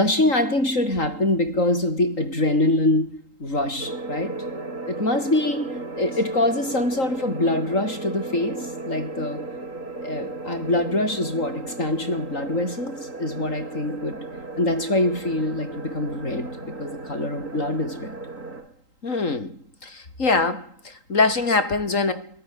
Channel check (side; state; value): right; late; 3.8 ms